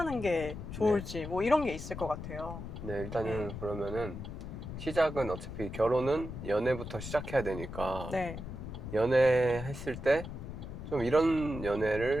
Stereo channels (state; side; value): noise; left; rumble, 8 dB below the sound